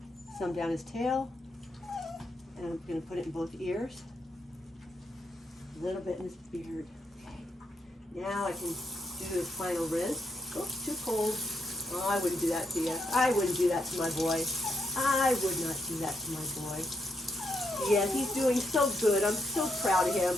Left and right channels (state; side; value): normal; both; correlation 0.80